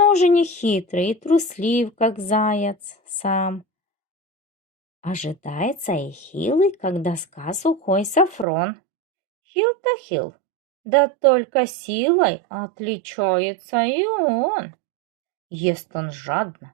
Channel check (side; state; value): left; drops out; at 8.5 s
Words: уже не хитрый и труслив, как заяц сам. Ожидается и хилый, как доска сухой Сафрон. Хил-то хил, да только силой отличается и он. Ест он жадно,